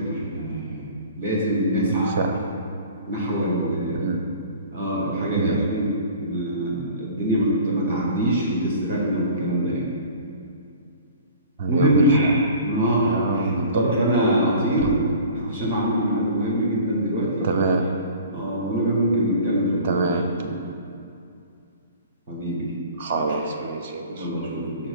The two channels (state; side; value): inverted; both; correlation -0.44